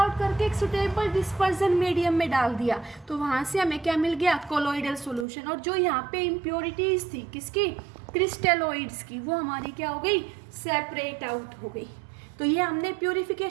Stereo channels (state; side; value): drops out; left; at 5.2 s